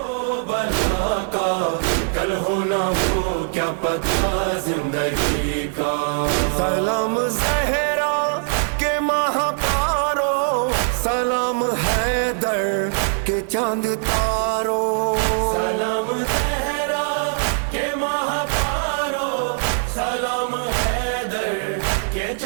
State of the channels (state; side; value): silent; left; 60 dB below the other